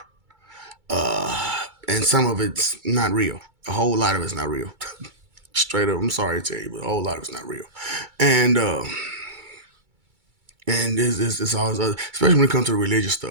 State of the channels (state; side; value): late; left; 2.3 ms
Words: and some of it's not real. A whole lot of it's not real. Straight up, I'm sorry to tell you, but a whole lot of it's not real, and this always, especially when it comes to religious